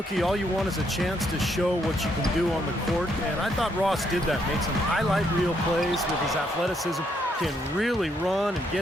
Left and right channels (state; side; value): normal; both; correlation 0.74